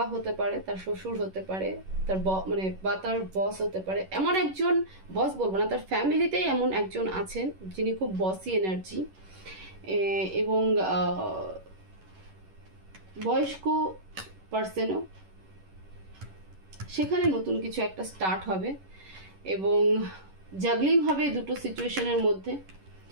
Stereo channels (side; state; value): left; late; 11 ms